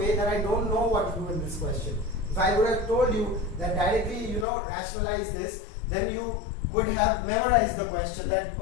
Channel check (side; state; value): right; drops out; at 4.5 s